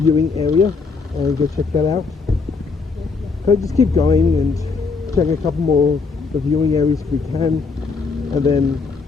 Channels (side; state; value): right; quieter; 4.6 dB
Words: area and go check that out. Okay, just keep going and check a couple more of the viewing areas if we can, and then